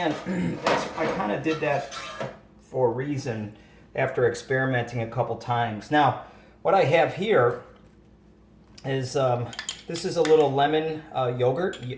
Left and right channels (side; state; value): both; identical; correlation 1.00